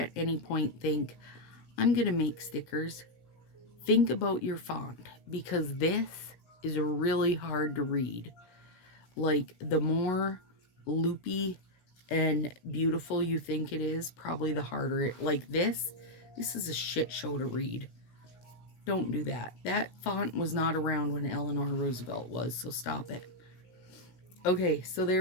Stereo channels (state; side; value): late; right; 16 ms